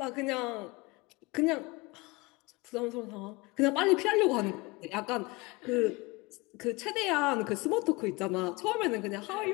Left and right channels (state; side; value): quieter; right; 24.3 dB